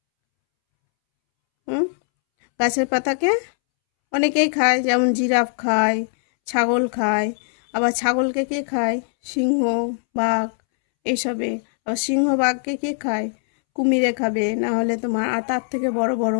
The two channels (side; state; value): right; silent; 65 dB below the other